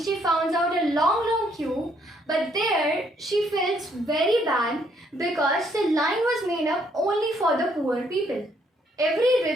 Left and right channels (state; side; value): normal; both; correlation 0.69